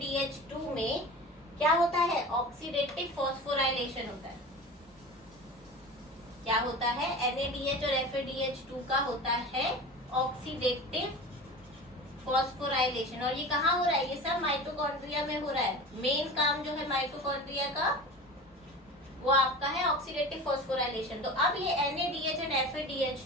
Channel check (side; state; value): both; normal; correlation 0.33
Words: में क्या होता है, ऑक्सीडेटिव फॉस्फोराइलेशन होता है। क्या होता है, NADH और FADH2 का होता है ऑक्सीडेटिव फॉस्फोराइलेशन। और ये कहाँ हो रहा है, ये सब माइटोकॉन्ड्रिया में हो रहा है। मेन काम जो है माइटोकॉन्ड्रिया का वो आपका है ऑक्सीडेटिव फॉस्फोराइलेशन। तो अब ये NADH and